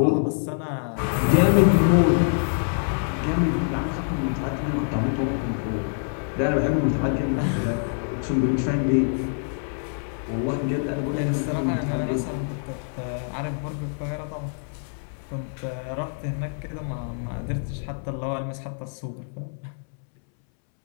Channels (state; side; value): silent; right; 62 dB below the other